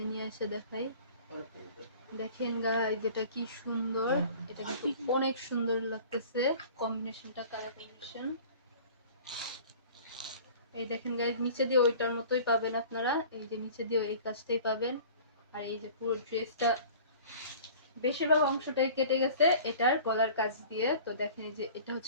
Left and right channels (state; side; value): inverted; both; correlation -0.45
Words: নিয়ে এসে দেখাই, দেখেন গাইজ এটা কি সুন্দর। এটা কিন্তু অনেক সুন্দর লাগতেছে কম্বিনেশনটা, কালার কম্বিনেশন। এই দেখেন গাইজ নিচে দিয়ে ওইটার মতোই পাবেন আপনারা, এই যে নিচে দিয়ে এই কাজটাই পাবেন। আর এই যে পুরো ড্রেসটা বেশিরভাগ অংশটাই কেটে গেছে এটার গলার কাজ দিয়ে। তো দেখেন এই যে এটা